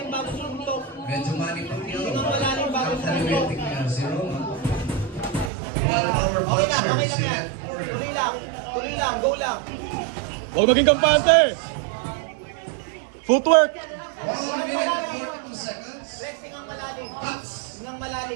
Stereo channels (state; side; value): drops out; left; at 5.5 s